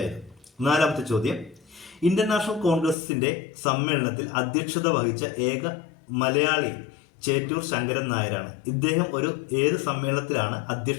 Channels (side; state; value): right; drops out; at 3.0 s